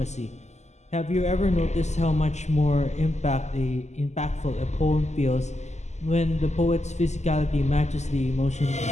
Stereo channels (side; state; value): right; late; 0.33 ms